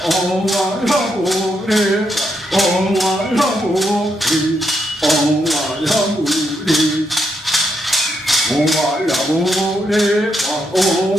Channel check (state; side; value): normal; both; correlation 0.80